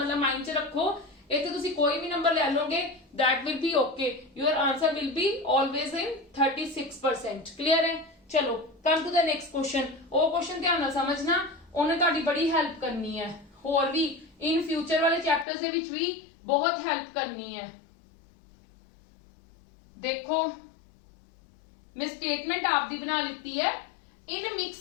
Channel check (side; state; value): right; drops out; at 15.5 s